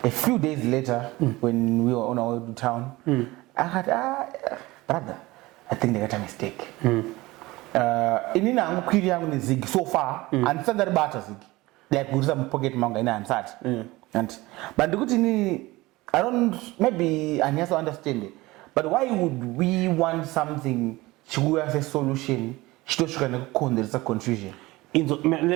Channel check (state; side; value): quieter; left; 20.1 dB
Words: a few days later, when we were on our way to town, I had, brother, I think they got a mistake. Inina mkwiri yangu ni ZIG so far, and standard bata ZIG. Like we some pocket manga ina ansat. And but the good thing, I don't, maybe I also understand it. But why would we want something to have a solution? There's a confusion.